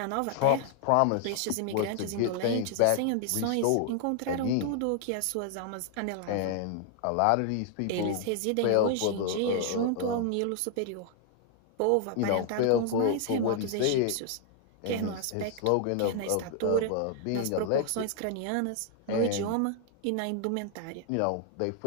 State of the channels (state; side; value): different; both; correlation 0.00